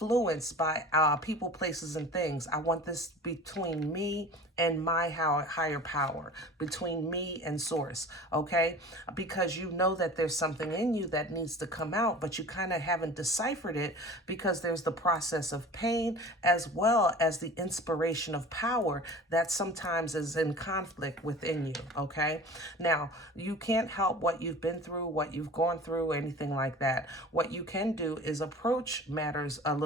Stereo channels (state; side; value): normal; both; correlation 0.40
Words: by people, places, and things. I want this between me and my higher power, between me and source, okay? Because you know that there's something in you that needs to come out, but you kind of haven't deciphered it because there's the process of pain as well as the inspiration of power that sometimes is in conflict within you, okay? Now, you can't help what you've been through, what you've gone through, anything like that. What you can do is approach matters a